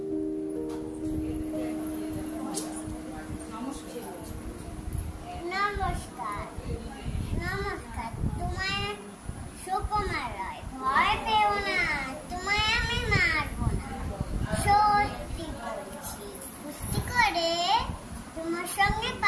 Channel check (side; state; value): both; identical; correlation 1.00